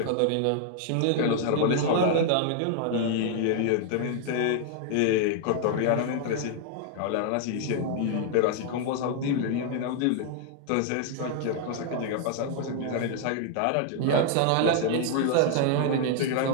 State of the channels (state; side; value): different; both; correlation 0.00